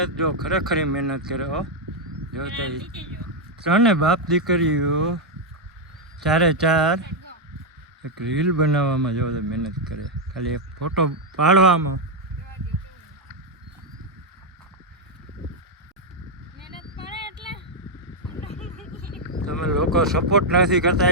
જો, ખરેખર મહેનત કરે હો. જો ત્રણે બાપ દીકરીઓ ચારે ચાર એક રીલ બનાવવામાં જો મહેનત કરે, ખાલી એક ફોટો પાડવામાં. મહેનત પડે એટલે તમે લોકો સપોર્ટ નથી કરતા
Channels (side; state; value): both; normal; correlation 0.00